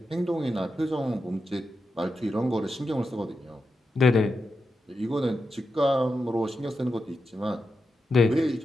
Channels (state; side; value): normal; both; correlation 0.88